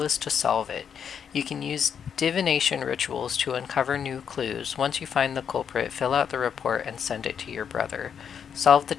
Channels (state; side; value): quieter; right; 7.6 dB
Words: is to solve it. You can use divination rituals to uncover new clues. Once you find the culprit, fill out the report and send it to your brother. Solve the